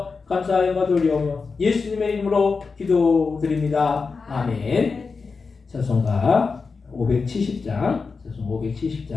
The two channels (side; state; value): right; quieter; 4.7 dB